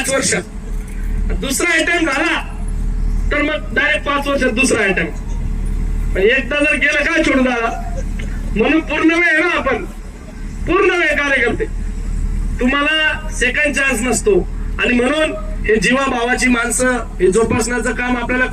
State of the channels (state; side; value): identical; both; correlation 1.00